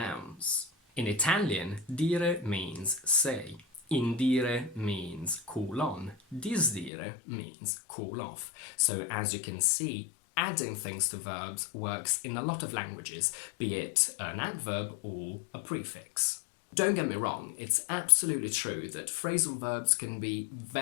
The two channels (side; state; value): right; drops out; at 6.9 s